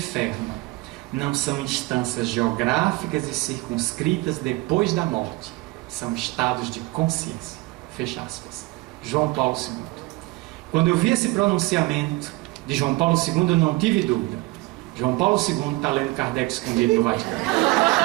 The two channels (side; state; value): left; quieter; 22.0 dB